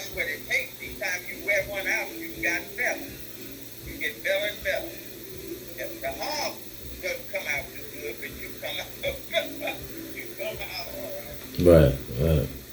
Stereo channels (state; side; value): identical; both; correlation 1.00